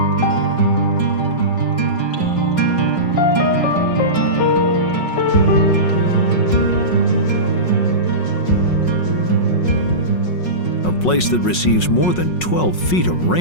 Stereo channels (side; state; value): right; late; 5.5 ms